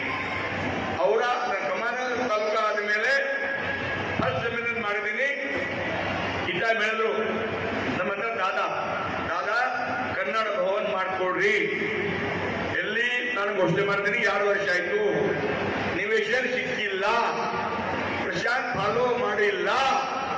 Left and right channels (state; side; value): identical; both; correlation 1.00